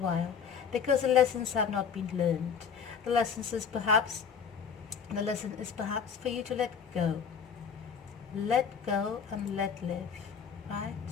because the lessons have not been learned. The lesson is perhaps for you to let go and let live, right?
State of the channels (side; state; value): right; quieter; 6.7 dB